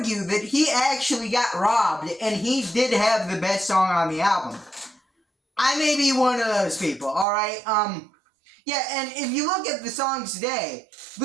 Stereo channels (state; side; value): drops out; left; at 7.2 s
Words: that he actually got robbed, and he did have the best song on the album. I may be one of those people, alright? Yeah, and if you look at the songs today,